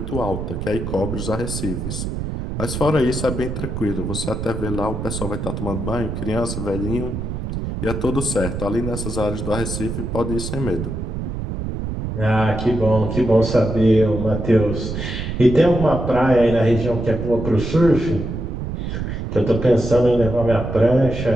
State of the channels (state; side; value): noise; right; rumble, 5 dB below the sound